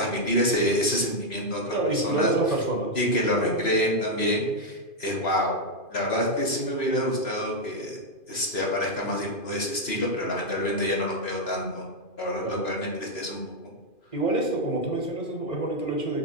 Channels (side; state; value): right; late; 2.4 ms